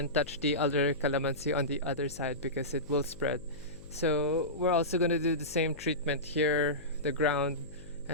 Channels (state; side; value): noise; left; hum, 18 dB below the sound